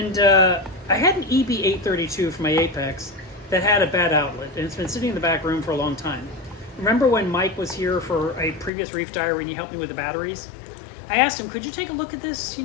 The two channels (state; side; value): drops out; right; at 8.7 s